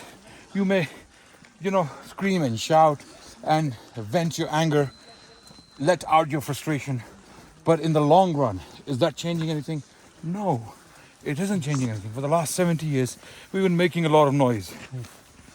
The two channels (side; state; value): both; identical; correlation 1.00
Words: You may, scream and shout and vent your anger, let out your frustration. But in the long run, is that changing anything? No, it isn't changing anything. For the last 70 years, we've been making a lot of noise.